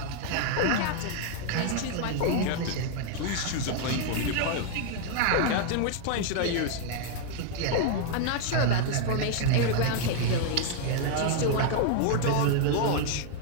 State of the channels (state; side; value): different; both; correlation 0.00